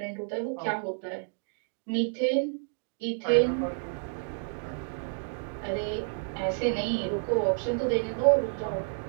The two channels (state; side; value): silent; left; digital silence